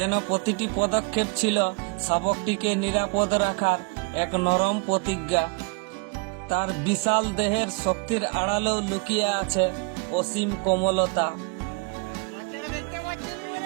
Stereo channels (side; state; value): left; quieter; 31.6 dB